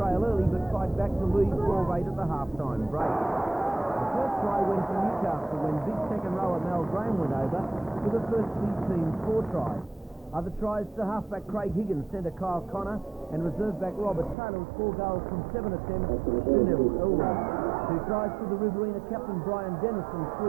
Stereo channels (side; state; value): left; drops out; at 14.4 s